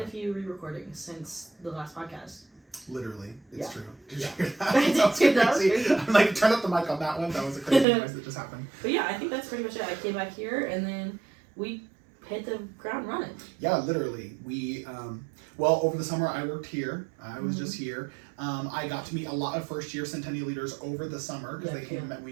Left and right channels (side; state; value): left; drops out; at 7.9 s